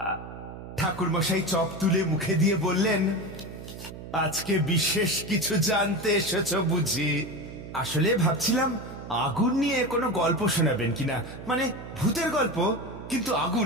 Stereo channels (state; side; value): noise; right; hum, 12 dB below the sound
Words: ঠাকুরমশাই চপ তুলে মুখে দিয়ে বললেন, আজকে বিশেষ কিছু জানতে এসেছো বুঝি? আসলে ভাবছিলাম আগুন নিয়ে কোনো গল্প শোনাবেন কিনা, মানে ভূতের গল্প, কিন্তু